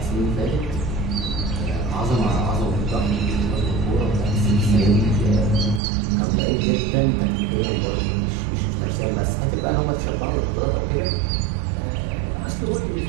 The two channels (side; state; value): left; drops out; at 5.8 s